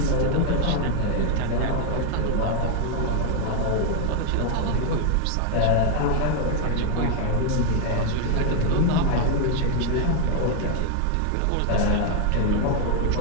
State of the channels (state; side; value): different; both; correlation 0.01